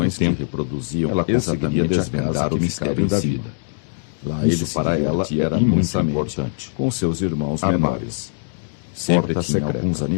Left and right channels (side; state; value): right; silent; digital silence